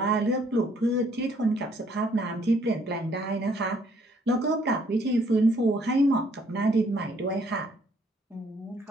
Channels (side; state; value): both; normal; correlation 0.65